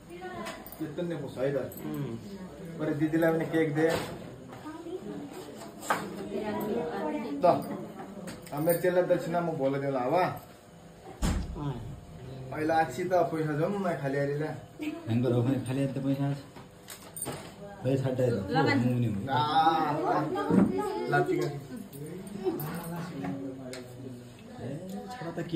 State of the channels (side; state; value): both; identical; correlation 1.00